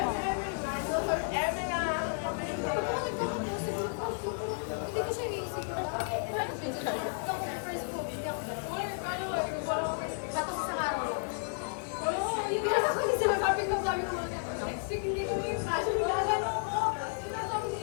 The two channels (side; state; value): right; silent; digital silence